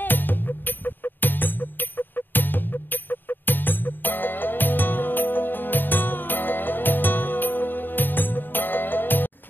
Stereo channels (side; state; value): right; late; 0.093 ms